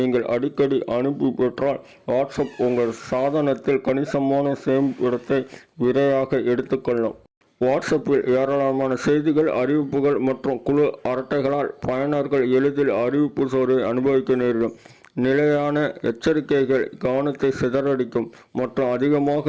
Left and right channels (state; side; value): identical; both; correlation 1.00